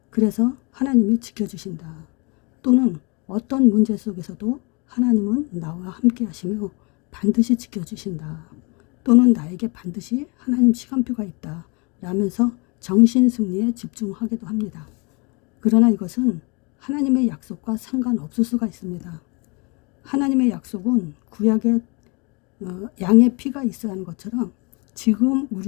그래서 하나님이 지켜주신다, 또는 어떤 문제 속에서도 하나님은 나와 함께 하시며 반드시 지켜주신다, 또는 나에게 반드시 하나님 시간표가 있다 라면서 정신승리에 집중하기도 합니다. 그러나 이것은 하나님의 약속과 상관없을 수가 있습니다. 하나님의 약속은 구약에 양의 피가 있어야 하는 것처럼 지금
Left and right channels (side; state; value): right; quieter; 30.6 dB